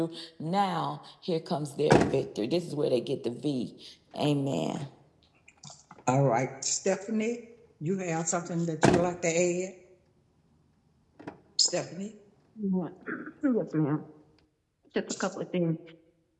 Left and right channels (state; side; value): identical; both; correlation 1.00